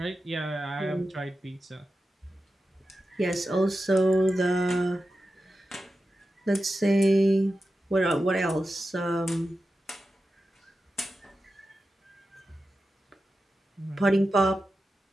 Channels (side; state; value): both; normal; correlation 0.92